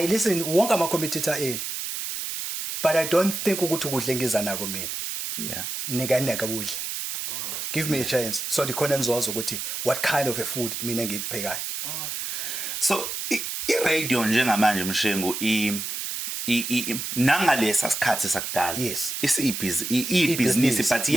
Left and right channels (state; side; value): noise; right; hiss, 4 dB below the sound